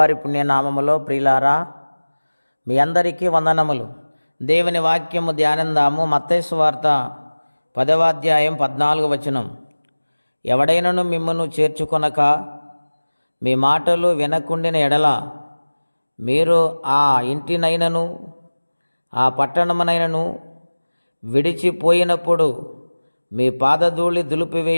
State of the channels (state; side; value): inverted; both; correlation -1.00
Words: పుణ్యనామములో ప్రియులారా, మీ అందరికీ వందనములు. దేవుని వాక్యము ధ్యానందాము. మత్తయి సువార్త 10వ అధ్యాయం 14వ వచనం. ఎవడైనను మిమ్మును చేర్చుకొనక మీ మాటలు వినకుండిన ఎడల మీరు ఆ ఇంటినైనను ఆ పట్టణమునైనను విడిచిపోయినప్పుడు మీ పాదధూళి